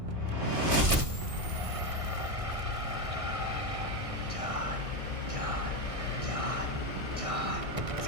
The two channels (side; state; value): left; late; 1.6 ms